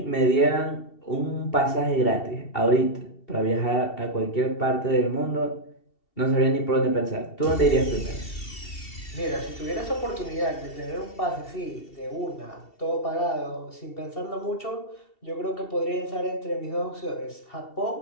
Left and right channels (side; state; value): right; late; 2.7 ms